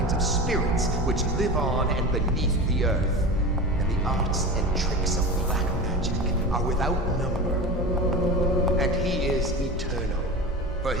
of spirits which live on and beneath the earth. And the arts and tricks of black magic are without number. And he is eternal, for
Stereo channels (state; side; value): normal; both; correlation 0.29